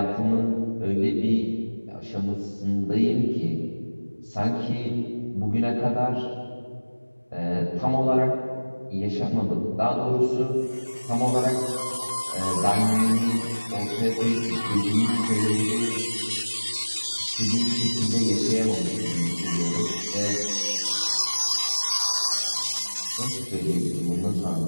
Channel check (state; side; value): inverted; both; correlation -1.00